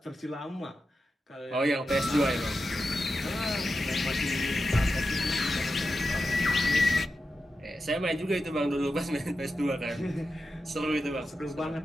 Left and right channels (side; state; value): both; normal; correlation 0.90